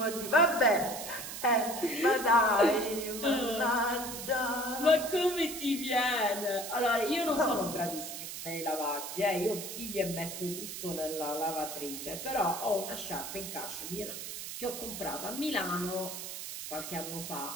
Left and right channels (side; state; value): right; noise; hiss, 8 dB below the sound